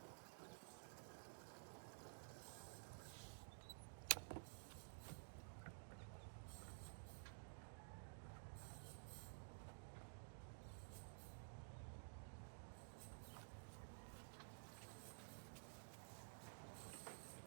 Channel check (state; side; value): silent; left; digital silence